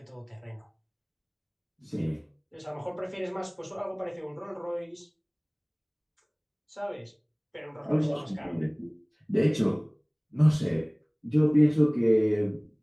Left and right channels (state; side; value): identical; both; correlation 1.00